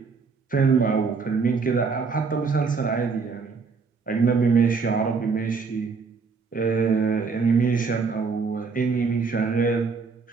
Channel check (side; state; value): left; quieter; 5.0 dB